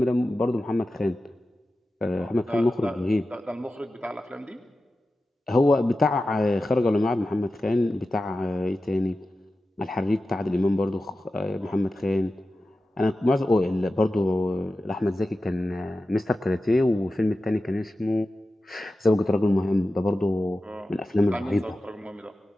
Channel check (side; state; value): both; normal; correlation 0.93